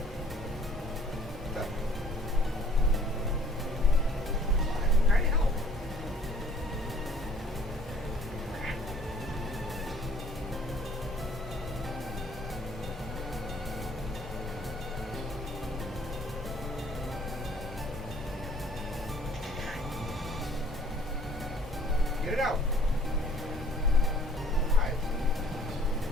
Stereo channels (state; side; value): normal; both; correlation 0.57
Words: Go. I'm trying to help. Get it out. Alright.